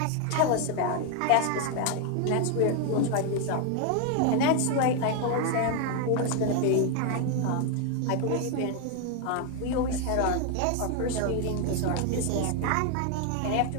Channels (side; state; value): both; different; correlation 0.01